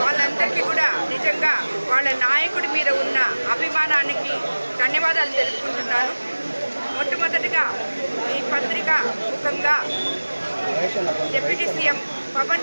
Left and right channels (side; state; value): both; inverted; correlation -1.00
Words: వాళ్ళందరికీ కూడా నిజంగా వాళ్ళ నాయకుడి మీద ఉన్న అభిమానానికి ధన్యవాదాలు తెలుపుకుంటున్నాను. మొట్టమొదటిగా ఈ పత్రిక ముఖంగా డిప్యూటీ సీఎం పవన్